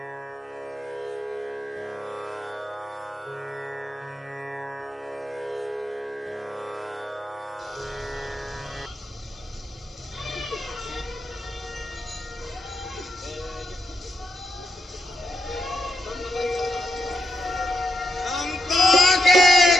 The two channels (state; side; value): normal; both; correlation 0.82